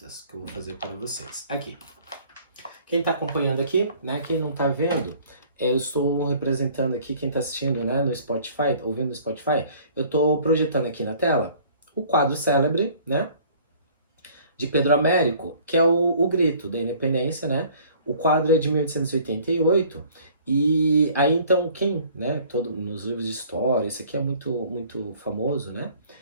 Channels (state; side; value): inverted; both; correlation -0.53